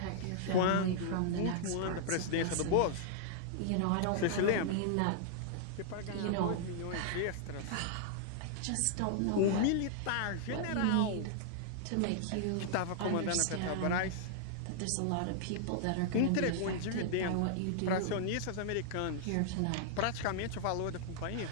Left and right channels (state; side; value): different; both; correlation -0.01